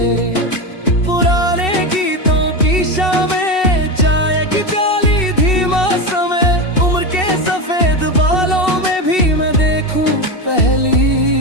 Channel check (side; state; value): right; late; 2.7 ms